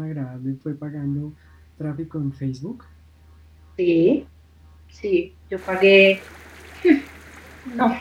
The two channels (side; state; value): both; identical; correlation 1.00